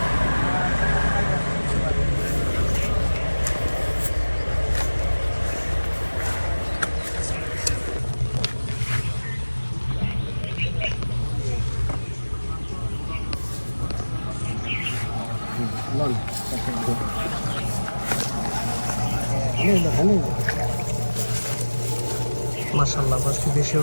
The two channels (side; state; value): both; inverted; correlation -1.00